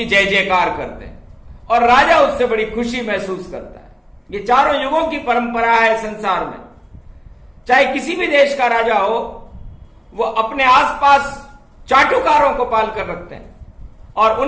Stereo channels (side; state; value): both; identical; correlation 1.00